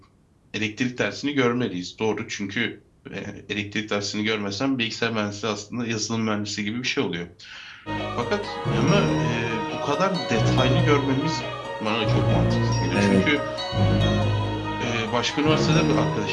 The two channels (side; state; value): both; identical; correlation 1.00